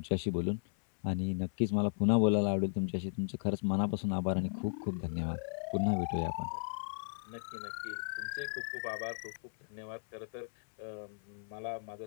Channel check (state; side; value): silent; right; 54 dB below the other